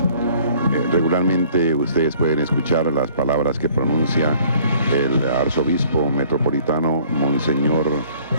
regularmente ustedes pueden escuchar las palabras que pronuncia el arzobispo metropolitano Monseñor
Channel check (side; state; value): both; inverted; correlation -0.56